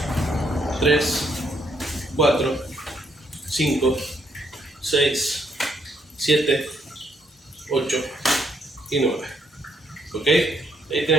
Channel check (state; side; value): normal; both; correlation 0.73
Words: 3, 4, 5, 6, 7, 8 y 9. ¿Ok? Ahí